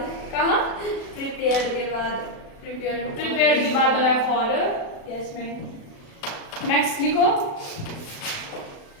कहाँ? प्रिपेयर्ड के बाद। प्रिपेयर्ड के बाद लगाया फॉर। Yes ma'am. नेक्स्ट लिखो।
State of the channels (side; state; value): right; late; 36 ms